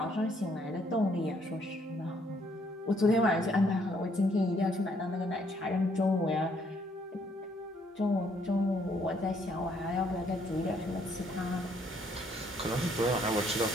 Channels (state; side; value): normal; both; correlation 0.68